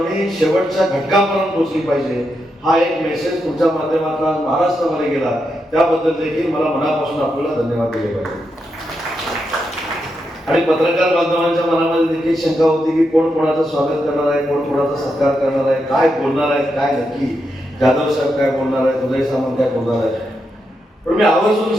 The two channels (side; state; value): both; normal; correlation 0.84